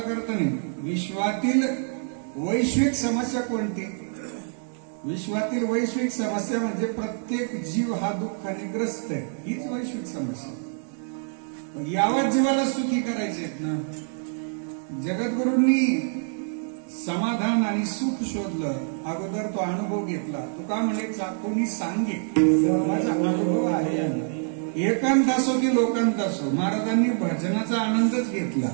नाही. विश्वातील वैश्विक समस्या कोणती? विश्वातील वैश्विक समस्या म्हणजे प्रत्येक जीव हा दुःखाने ग्रस्त आहे, हीच वैश्विक समस्या. यावर जीवाला सुखी करायचे आहेत ना. जगद्गुरूंनी समाधान आणि सुख शोधलं. अगोदर तो अनुभव घेतला. तो का म्हणे कोणी सांगे माझा अनुभव आहे. एकांत असो की लोकांत असो, महाराजांनी भजनाचा आनंदच घेतला.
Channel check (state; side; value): silent; left; 60 dB below the other